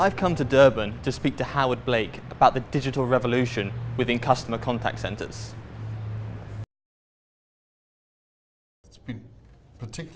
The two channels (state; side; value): identical; both; correlation 1.00